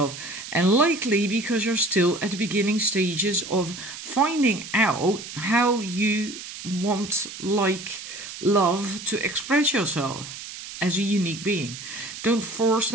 and likely because you're still at the beginning stages of finding out how you want, like, love to express yourself as a unique being. Don't force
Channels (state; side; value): noise; right; hiss, 11 dB below the sound